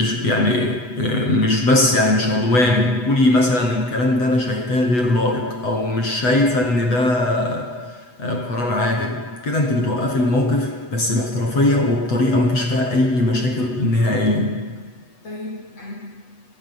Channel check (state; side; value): late; right; 8.1 ms